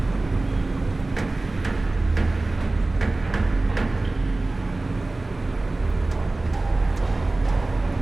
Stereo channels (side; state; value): left; quieter; 3.0 dB